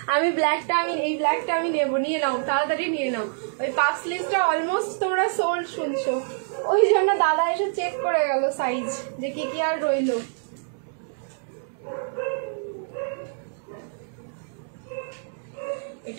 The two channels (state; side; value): silent; left; digital silence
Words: আমি এই ব্ল্যাকটা আমি নেবো, নিয়ে নাও তাড়াতাড়ি নিয়ে নাও। ওই পাফ স্লিভসটা অলমোস্ট তোমরা সোল্ড শুনছো, ওই জন্য দাদা এসে চেক করে গেল সাইজ যে কি কি আর রইলো।